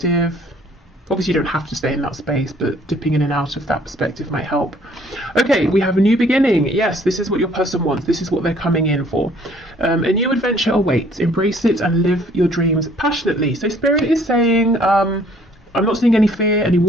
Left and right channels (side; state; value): both; normal; correlation 0.59